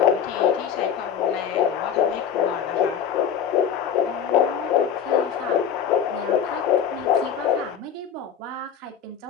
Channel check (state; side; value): quieter; right; 8.2 dB